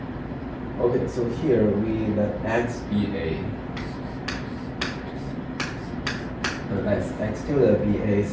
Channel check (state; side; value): identical; both; correlation 1.00